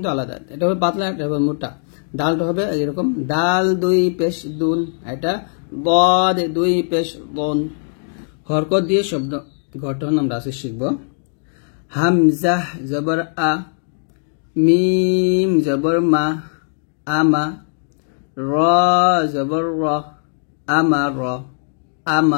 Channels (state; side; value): silent; right; digital silence